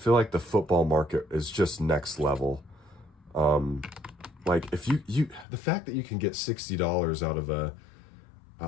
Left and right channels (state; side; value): drops out; right; at 5.5 s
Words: like the football market is just next level. Like if the fact that you can get $60 out of